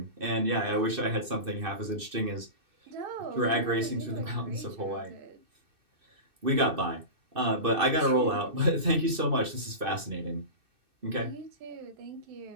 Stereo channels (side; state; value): left; late; 2.6 ms